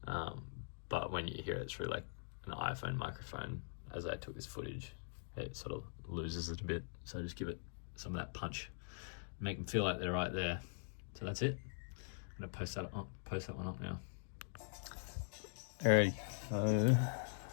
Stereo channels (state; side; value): silent; right; digital silence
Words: but when you hear it through an iPhone microphone, as I took this footage, it sort of loses it a bit. So just give it some of that punch, make them feel like they're right there. So that's it. I'm gonna post that one up now. Alright, so